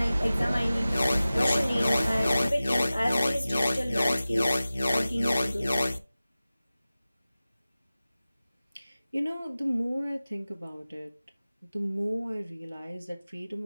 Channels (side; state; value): both; inverted; correlation -0.97